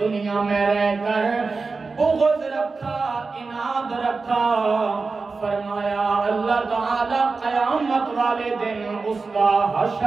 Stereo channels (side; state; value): left; quieter; 4.2 dB